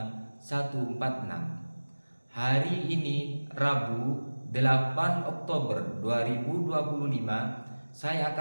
146. Hari ini Rabu 8 Oktober 2025 saya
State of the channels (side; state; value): both; inverted; correlation -1.00